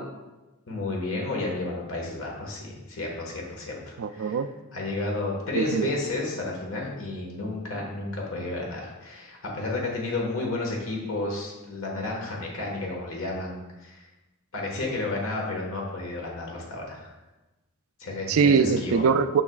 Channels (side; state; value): both; normal; correlation 0.12